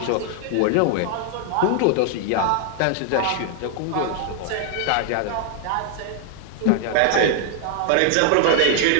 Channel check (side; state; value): both; different; correlation 0.00